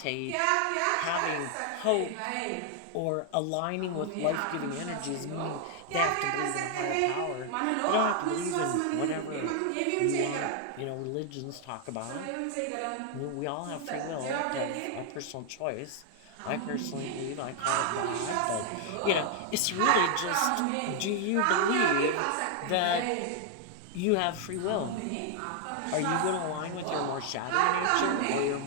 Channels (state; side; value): different; both; correlation 0.00